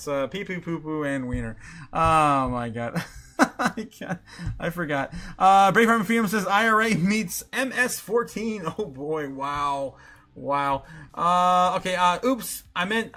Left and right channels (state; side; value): identical; both; correlation 1.00